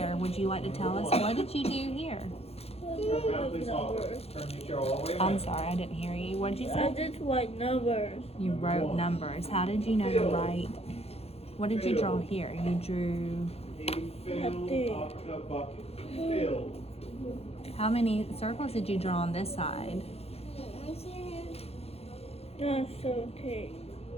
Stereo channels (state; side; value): late; right; 0.29 ms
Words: Would you like to tell us, what did you do here? Turn around, please. Turn your chair all the way I'm around. sorry, I didn't hear you. What did you I say? just write numbers. You wrote numbers. How did you know to write? What did you draw here? You drew, He filled up the bucket. Filled. how many circles did you draw on this side? That's okay.